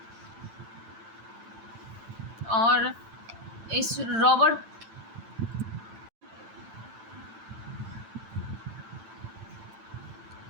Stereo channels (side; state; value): left; late; 8.9 ms